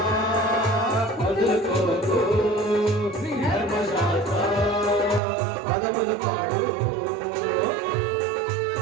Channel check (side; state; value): left; drops out; at 5.2 s